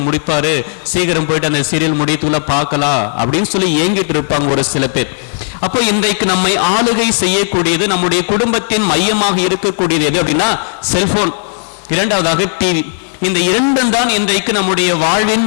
முடிப்பாரு, சீக்கிரம் போயிட்டு அந்த சீரியல் முடித்துள்ள பார்க்கலாம் அப்படின்னு சொல்லி ஏங்கிட்டு இருப்பாங்க ஒரு சில பேர். அப்போ இன்றைக்கு நம்மை ஆளுகை செய்யக்கூடியது, நம்முடைய குடும்பத்தின் மையமாக இருக்கக்கூடியது எது அப்படின்னா செல்போன், இரண்டாவதாக டிவி. இந்த இரண்டும் தான் இன்றைக்கு நம்முடைய வாழ்வின்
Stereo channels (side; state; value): right; silent; digital silence